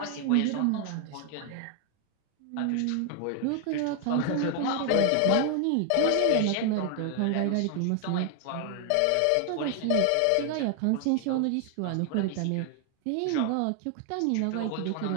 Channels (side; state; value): both; different; correlation 0.00